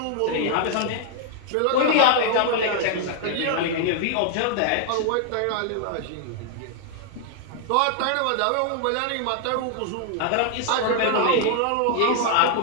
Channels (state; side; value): different; both; correlation 0.00